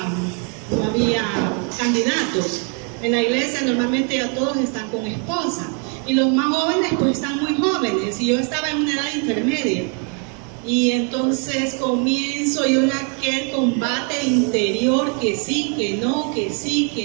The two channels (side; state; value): left; quieter; 38.7 dB